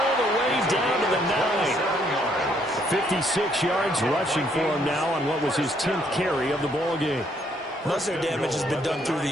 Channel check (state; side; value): normal; both; correlation 0.69